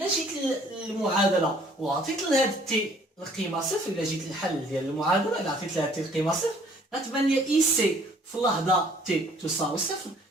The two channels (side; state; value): both; normal; correlation 0.58